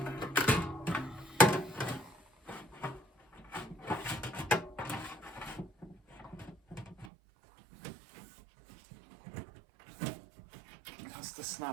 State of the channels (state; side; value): drops out; left; at 7.1 s